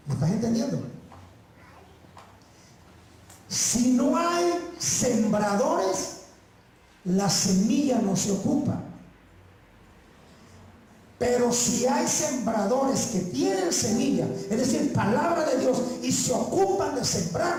¿Me estás entendiendo? Si no hay sembradores, la semilla no se ocupa. Pero si hay sembradores que tienen semilla, es decir, palabra de Dios, y se ocupan de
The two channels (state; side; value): identical; both; correlation 1.00